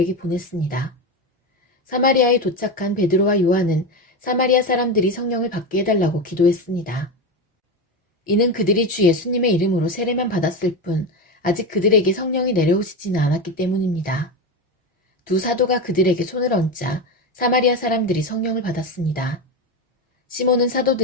보냈습니다. 사마리아에 도착한 베드로와 요한은 사마리아 사람들이 성령을 받게 해달라고 기도했습니다. 이는 그들이 주 예수님의 이름으로 세례만 받았을 뿐 아직 그들에게 성령이 내려오시지는 않았기 때문입니다. 두 사도가 그들에게 손을 얹자 사마리아 사람들이 성령을 받았습니다. 시몬은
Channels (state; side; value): normal; both; correlation 0.18